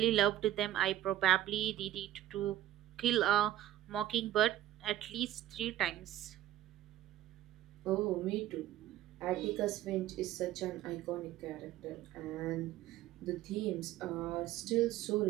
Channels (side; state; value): left; quieter; 13.3 dB